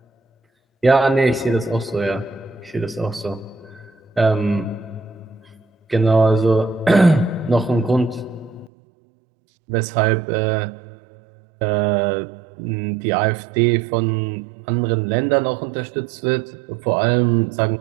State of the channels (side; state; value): left; drops out; at 8.7 s